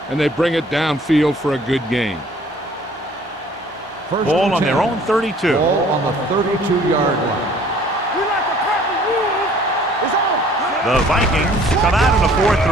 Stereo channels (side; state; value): both; normal; correlation 0.55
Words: and they bring it downfield for a good gain. Ball on their own 32. Ball on the 32-yard line. We like to crack the rules. It's on. The Vikings come out in a